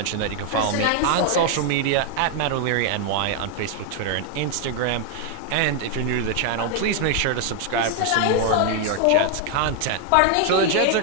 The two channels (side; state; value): both; different; correlation 0.01